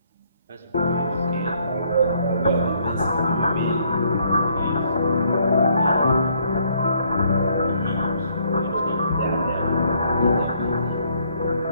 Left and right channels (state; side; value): inverted; both; correlation -0.67